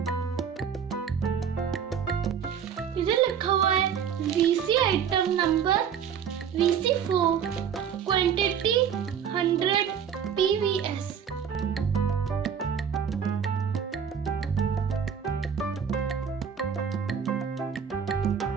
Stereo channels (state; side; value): quieter; left; 7.7 dB